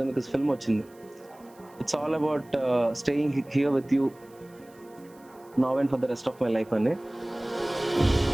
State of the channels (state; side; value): noise; right; hiss, 29 dB below the sound